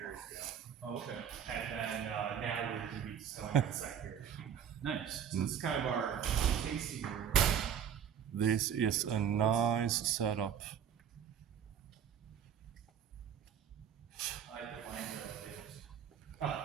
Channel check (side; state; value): left; quieter; 8.5 dB